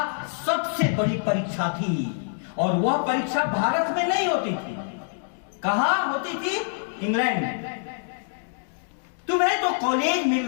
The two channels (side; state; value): right; silent; digital silence